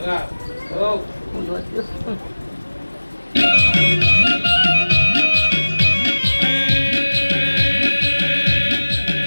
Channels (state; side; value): inverted; both; correlation -1.00